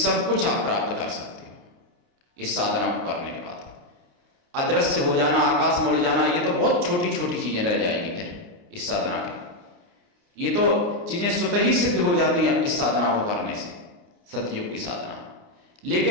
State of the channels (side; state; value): left; late; 29 ms